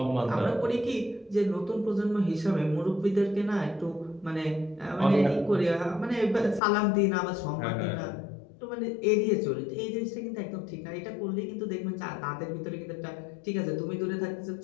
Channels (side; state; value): right; drops out; at 6.6 s